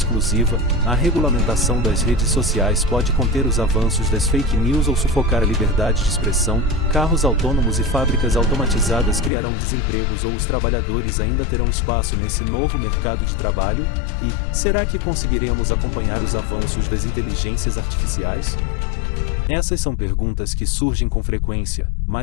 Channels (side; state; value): right; drops out; at 9.3 s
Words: A regulamentação das redes sociais pode conter os avanços das fake news ou sufocar a liberdade de expressão? Carros autônomos e fábricas automatizadas criarão desempregos ou os trabalhadores ainda terão espaço nesse novo mercado de trabalho? E, será que conseguiremos acompanhar os avanços das inteligências artificiais? Essas são perguntas que surgem com frequência,